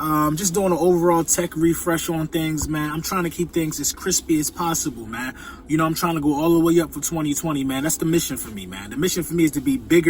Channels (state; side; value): identical; both; correlation 1.00